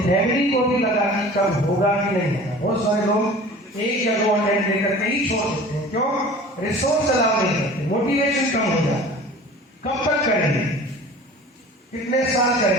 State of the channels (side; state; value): both; normal; correlation 0.42